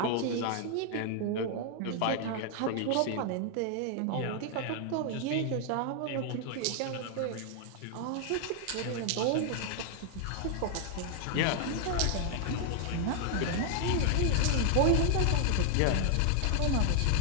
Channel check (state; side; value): different; both; correlation 0.00